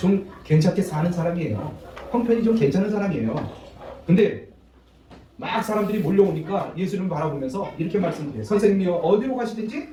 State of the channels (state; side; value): identical; both; correlation 1.00